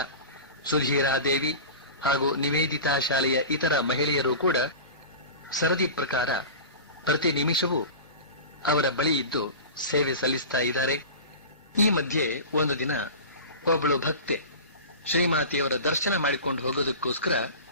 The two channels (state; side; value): inverted; both; correlation -0.32